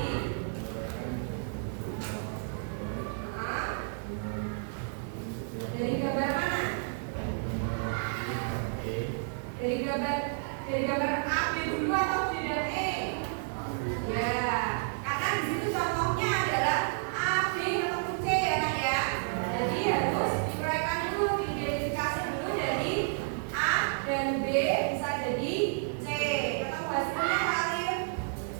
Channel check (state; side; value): silent; left; digital silence